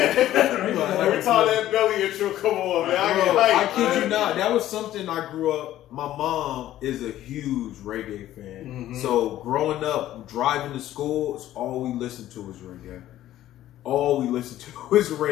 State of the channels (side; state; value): right; quieter; 13.4 dB